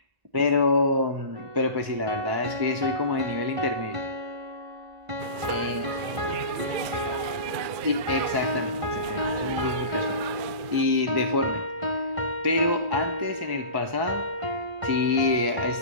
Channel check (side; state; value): left; late; 2.3 ms